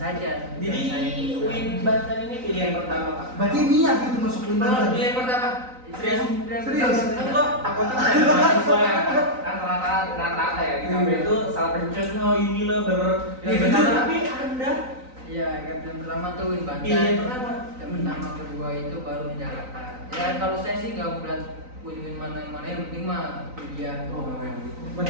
Jadi UIN Banten ini pilihan pertama Kak. Berarti niat itu masuk UIN Banten. Pilihan pertama. Serius? Enggak, aku tuh kayak mahasiswa yang kan rata-rata ya di kampus itu salah pencet ini lah tapi Anda Iya, yang pertama tuh UIN Banten. pilihan pertama. Yang pertama kedua itu baru di Jakarta. Ya kalau saya sih nggak berat UIN mana yang penting mah kuliah. Oh, berarti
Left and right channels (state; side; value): late; left; 3.9 ms